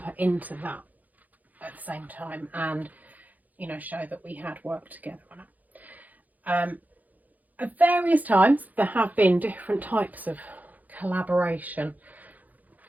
into that at the same time, and, you know, show that we had worked together on it. At various times there have been different types of collaboration.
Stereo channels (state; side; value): late; left; 0.080 ms